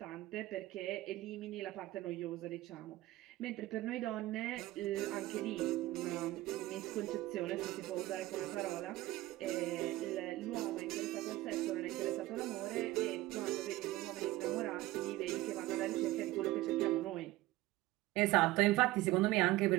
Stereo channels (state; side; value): quieter; left; 17.6 dB